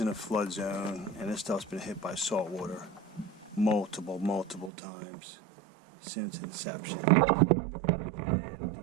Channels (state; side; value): drops out; left; at 4.7 s